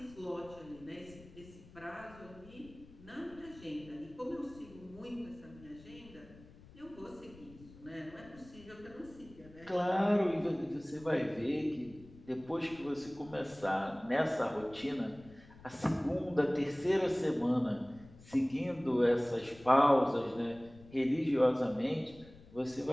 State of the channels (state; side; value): noise; left; rumble, 21 dB below the sound